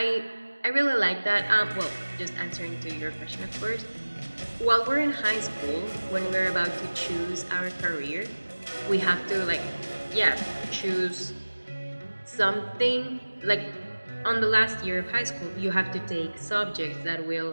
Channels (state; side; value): inverted; both; correlation -1.00